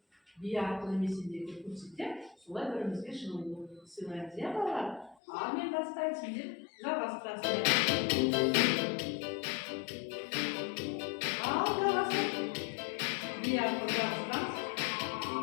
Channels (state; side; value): drops out; right; at 5.2 s